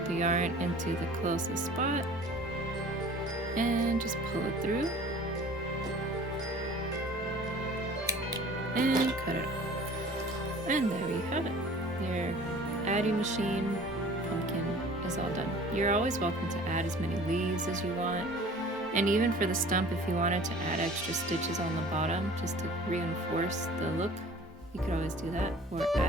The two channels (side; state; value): both; normal; correlation 0.46